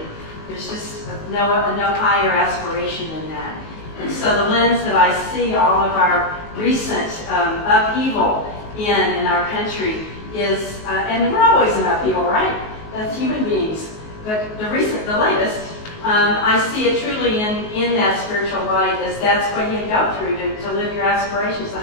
There's just no higher aspiration than that. And so the lens that I see all of our recent upheaval in our country is, and we're always in upheaval, right? That's human beings. But the latest, I see it truly in that spiritual light, as that's what you go through to live your aspirations. The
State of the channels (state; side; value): late; right; 19 ms